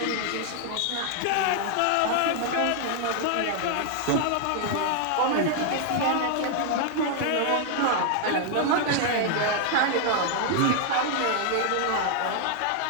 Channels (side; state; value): both; different; correlation 0.00